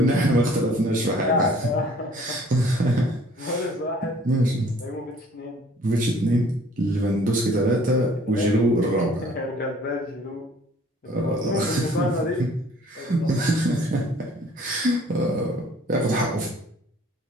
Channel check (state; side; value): normal; both; correlation 0.55